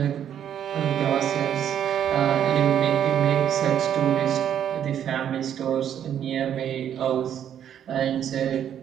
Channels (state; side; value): quieter; left; 9.7 dB